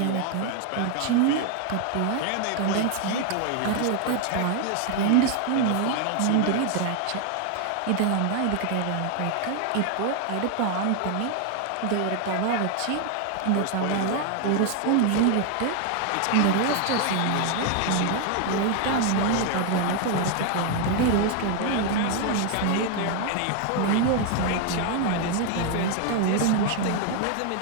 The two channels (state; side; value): different; both; correlation 0.00